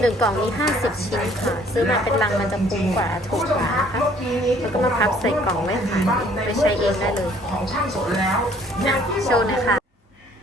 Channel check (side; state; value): both; normal; correlation 0.58